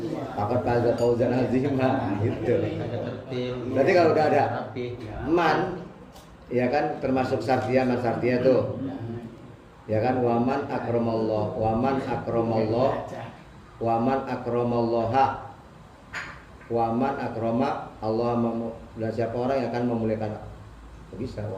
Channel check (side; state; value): both; identical; correlation 1.00